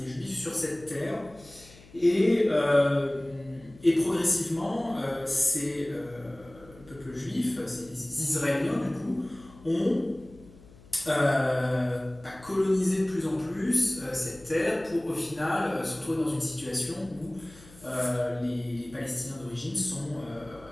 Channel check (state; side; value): noise; left; hum, 23 dB below the sound